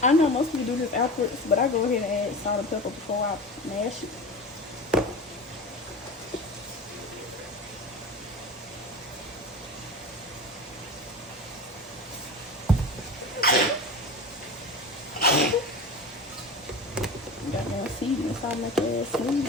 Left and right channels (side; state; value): both; normal; correlation 0.31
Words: I know most people do this afterwards, but I go ahead and add salt and pepper before I mash it. Got more seasoning, so I'll make your ass smooth.